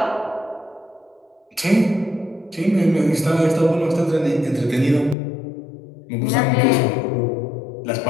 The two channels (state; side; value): drops out; right; at 5.2 s